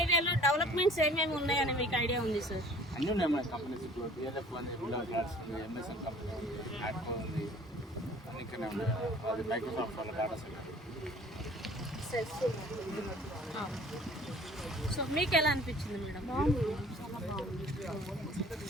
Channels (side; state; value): both; normal; correlation 0.51